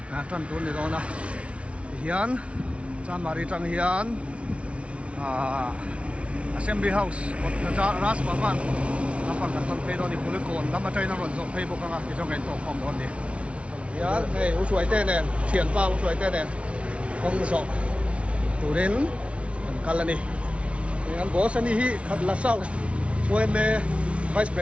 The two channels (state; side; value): late; left; 0.061 ms